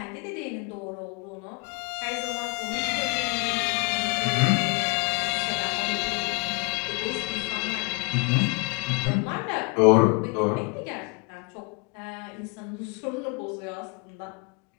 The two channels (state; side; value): quieter; right; 30.2 dB